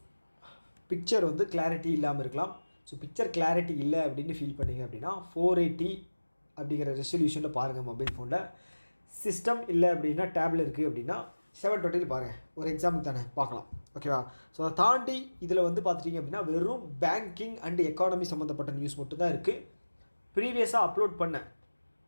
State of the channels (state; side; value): inverted; both; correlation -1.00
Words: பிக்சர் வந்து கிளாரிட்டி இல்லாமல் இருக்கலாம். ஸோ பிக்சர் கிளாரிட்டி இல்லை அப்படின்னு ஃபீல் பண்ணிங்க அப்படின்னா 480 அப்படிங்கிற ரெசல்யூஷனில் பாருங்கள் மொபைல் ஃபோனில். சிஸ்டம் இல்லை அப்படின்னா டேபில் இருக்குது அப்படின்னா 720 பாருங்கள். ஒரு எக்ஸாம்பிள் தானே பார்க்கலாம். ஓகேவா? ஸோ அதை தாண்டி இதில் வந்து பார்த்துட்டிங்க அப்படின்னா வெறும் பேங்கிங் அண்ட் எக்கானமி சம்மந்தப்பட்ட நியூஸ் மட்டும் தான் இருக்குது. ப்ரீவியஸாக அப்லோட் பண்ண